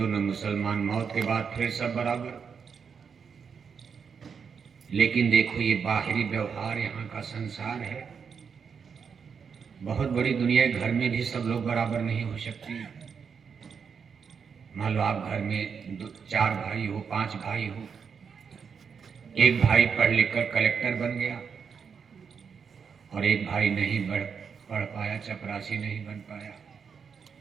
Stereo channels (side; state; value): left; quieter; 6.4 dB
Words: न मुसलमान। मौत के बाद फिर सब बराबर। लेकिन देखो ये बाहरी व्यवहार यहाँ का संसार है। बहुत बड़ी दुनिया है, घर में भी सब लोग बराबर नहीं हो सकते। मान लो आप घर में 4 भाई हो, 5 भाई हो, एक भाई पढ़ लिख कर कलेक्टर बन गया और एक भाई नहीं पढ़ पाया, चपरासी नहीं बन पाया।